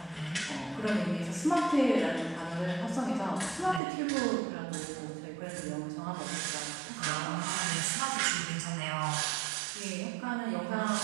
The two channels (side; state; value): left; drops out; at 3.8 s